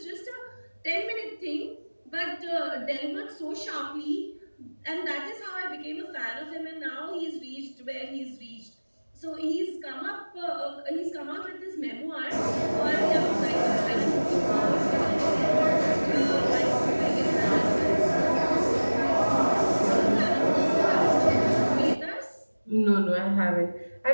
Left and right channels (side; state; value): both; inverted; correlation -1.00